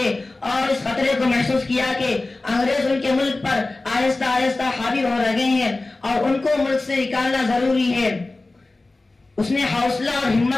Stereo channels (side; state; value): right; quieter; 3.1 dB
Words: اور اس خطرے کو محسوس کیا کہ انگریز ان کے ملک پر آہستہ آہستہ حاوی ہو رہے ہیں اور ان کو ملک سے نکالنا ضروری ہے۔ اس نے حوصلہ اور